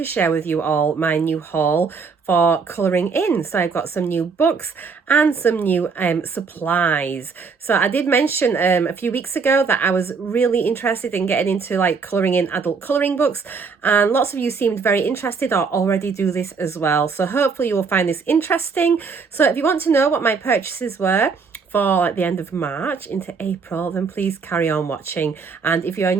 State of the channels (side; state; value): left; quieter; 5.2 dB